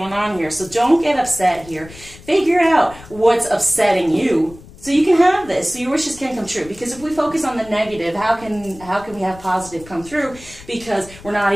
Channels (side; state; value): left; noise; rumble, 20 dB below the sound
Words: on here. So don't get upset here. Figure out what's upsetting you so you can have this, so your wishes can come true. Because if we focus on the negative, how can we have positive come through? Because we're not